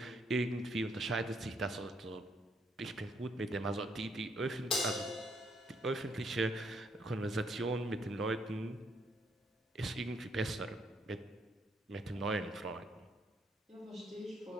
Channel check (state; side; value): normal; both; correlation 0.71